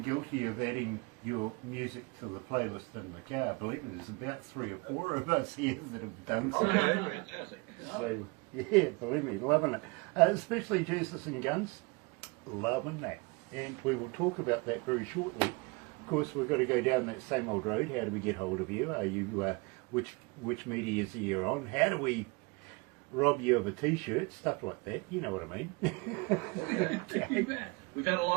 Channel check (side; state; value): left; quieter; 27.7 dB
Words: guilty of adding your music to the playlist in the car. Believe me, there's about 3 or 4 of us here that have done so. Okay, fantastic. So, yeah, believe me, loving it. Especially Jesus and Guns, loving that. And we will talk about that very shortly. Of course, we've got to go down that same old road. How do we get hold of you? Are you which media is you on? How do we rob you of a T-shirt? Stuff like that. You know what I mean? Okay. We've had a